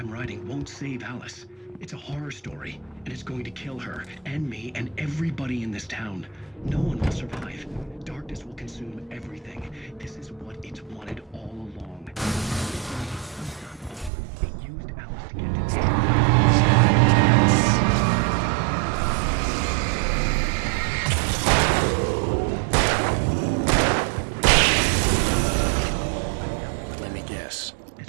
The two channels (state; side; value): drops out; left; at 14.1 s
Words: writing won't save Alice. It's a horror story, and it's going to kill her, and me, and everybody in this town. No one will survive. Darkness will consume everything. This is what it's wanted all along. It used Alice to get to this story. Let me guess.